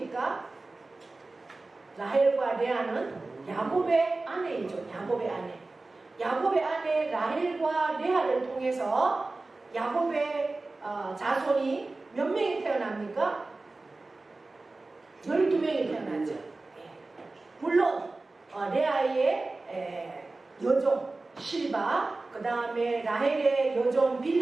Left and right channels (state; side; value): quieter; left; 3.3 dB